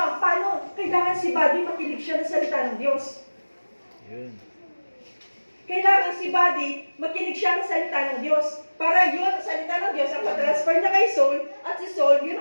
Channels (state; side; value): inverted; both; correlation -1.00